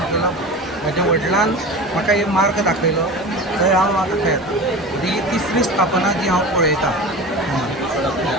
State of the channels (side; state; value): both; normal; correlation 0.32